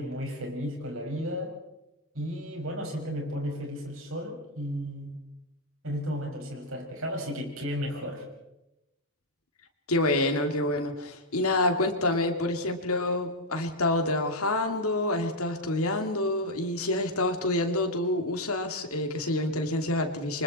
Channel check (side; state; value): both; normal; correlation 0.00